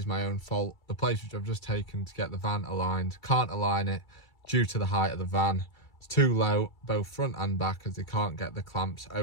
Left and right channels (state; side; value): late; right; 2.3 ms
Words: my own fault. The place which I've just taken to get the van aligned, can't align it due to the height of the van. It's too low, both front and back, as they can't get the clamps